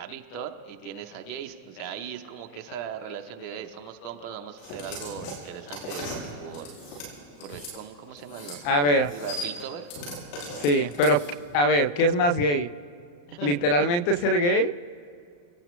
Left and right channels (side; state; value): right; late; 35 ms